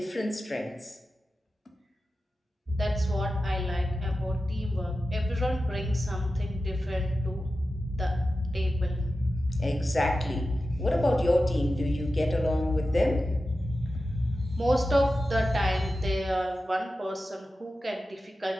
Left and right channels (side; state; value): both; normal; correlation 0.93